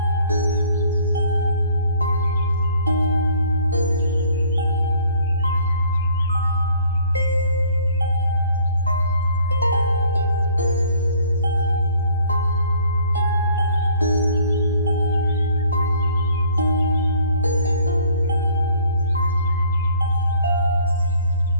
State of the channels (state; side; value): inverted; both; correlation -0.56